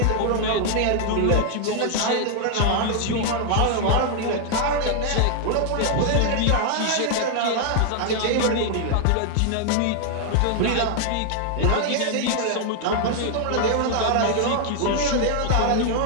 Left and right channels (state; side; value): different; both; correlation 0.00